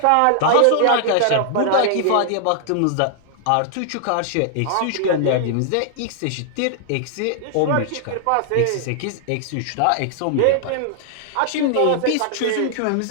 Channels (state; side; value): different; both; correlation -0.01